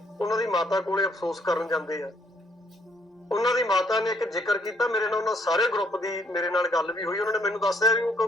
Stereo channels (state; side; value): normal; both; correlation 0.68